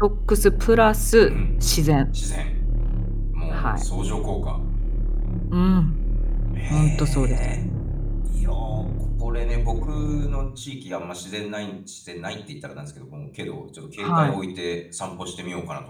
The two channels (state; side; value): identical; both; correlation 1.00